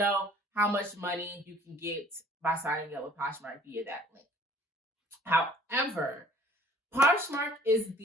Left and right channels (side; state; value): both; normal; correlation 0.53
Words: how much money you can get by signing up with Poshmark via that link. However, Poshmark is